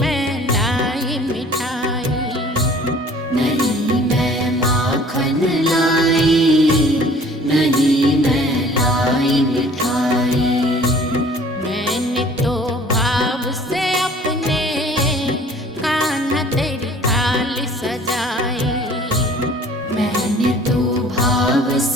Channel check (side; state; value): both; normal; correlation 0.51